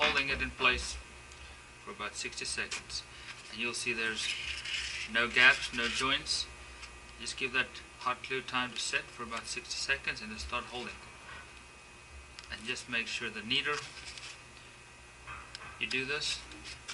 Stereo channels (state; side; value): identical; both; correlation 1.00